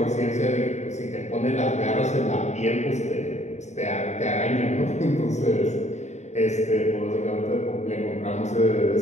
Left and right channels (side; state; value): right; late; 0.33 ms